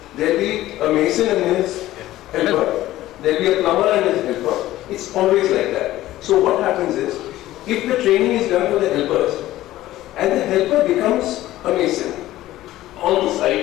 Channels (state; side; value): quieter; right; 15.2 dB